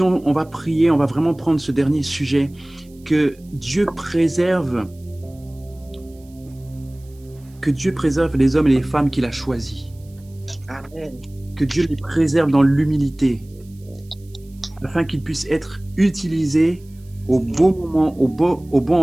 va prier, on va vraiment prendre ce dernier sujet, que Dieu préserve les hommes et les femmes qu'il a choisis. Amen. Que Dieu les préserve dans l'humilité, afin qu'ils puissent être utilisés au bon moment, au bon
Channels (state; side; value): noise; right; hiss, 30 dB below the sound